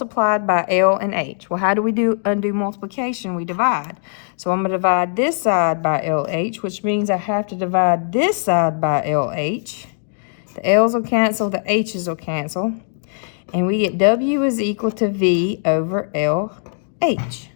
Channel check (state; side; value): silent; right; digital silence